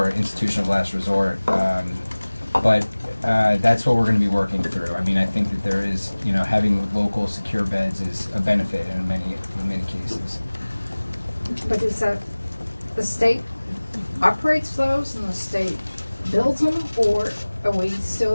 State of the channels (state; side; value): inverted; both; correlation -1.00